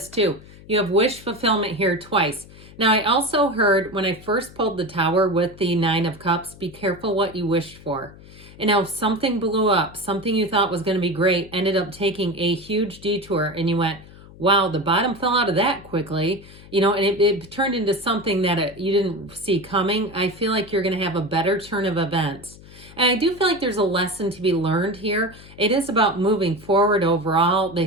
too. You have wish fulfillment here twice. Now, I also heard when I first pulled the Tower with the Nine of Cups, be careful what you wished for. And now if something blew up, something you thought was going to be great, ended up taking a huge detour, and you went, wow, the bottom fell out of that quickly, and it turned into something that you didn't see coming. I feel like you're going to have a better turn of events. And I do feel like there's a lesson to be learned here. It is about moving forward overall.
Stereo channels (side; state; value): left; noise; hum, 20 dB below the sound